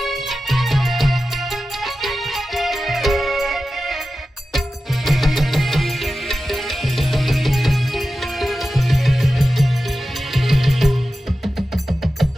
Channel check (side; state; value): both; normal; correlation 0.93